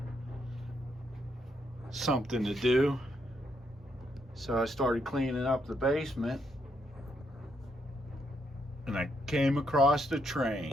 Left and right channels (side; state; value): both; normal; correlation 0.77